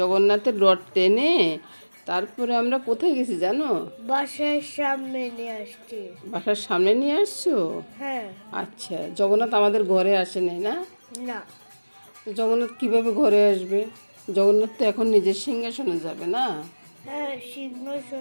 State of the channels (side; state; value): both; inverted; correlation -1.00